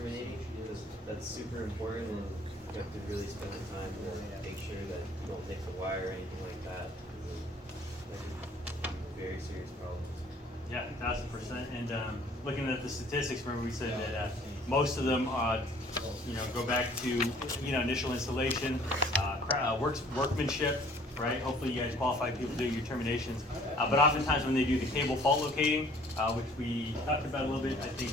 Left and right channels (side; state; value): both; normal; correlation 0.55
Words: because that's super important, and you have to really spend the time to make sure that you don't nick the wire or anything like that. That could be very serious problems. Yeah, 1000%. And looking at the statistics, remember we said that most of them, go back to initial installation, workmanship, right? Hopefully you guys qualified people do your terminations. But oftentimes when they do the cable fault locating, which we talked about a little bit, I think,